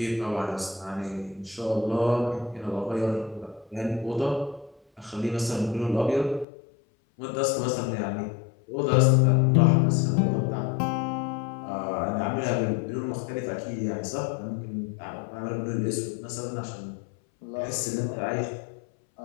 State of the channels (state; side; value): drops out; right; at 6.5 s